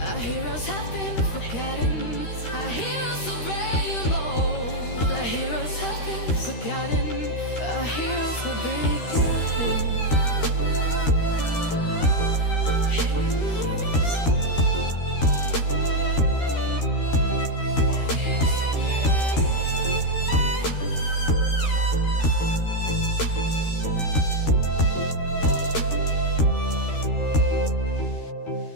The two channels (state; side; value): late; right; 13 ms